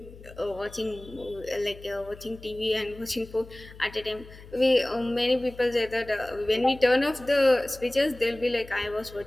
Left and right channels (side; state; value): left; noise; hum, 18 dB below the sound